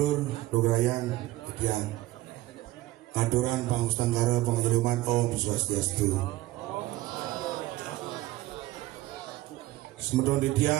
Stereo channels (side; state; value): left; quieter; 17.2 dB